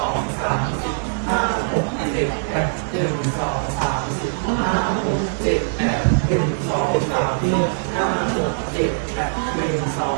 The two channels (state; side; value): silent; left; 59 dB below the other